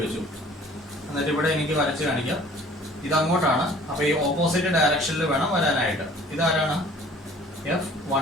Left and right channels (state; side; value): normal; both; correlation 0.51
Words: വെച്ചു. എന്നിട്ട് ഇവിടെ എനിക്ക് വരച്ച് കാണിക്കാം. ഇത് അങ്ങോട്ടാണ്, അപ്പൊ ഈ ഓപ്പോസിറ്റ് ഡയറക്ഷനിൽ വേണം വരാനായിട്ട്. ഇതാരാണ്?